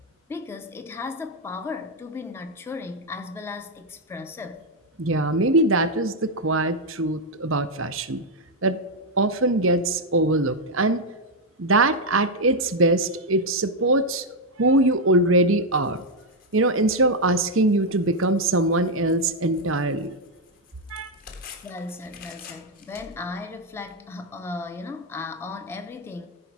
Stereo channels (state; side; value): normal; both; correlation 0.01